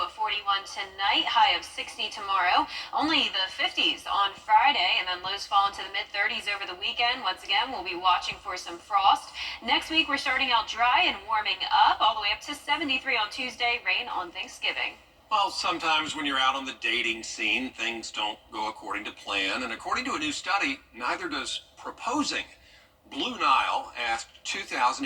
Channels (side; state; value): both; identical; correlation 1.00